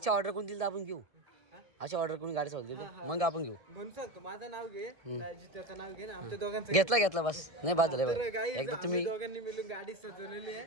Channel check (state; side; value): late; left; 1.7 ms